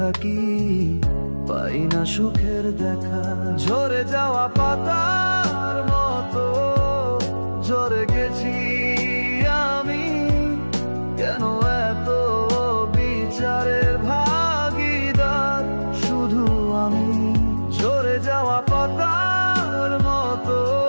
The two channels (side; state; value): both; inverted; correlation -1.00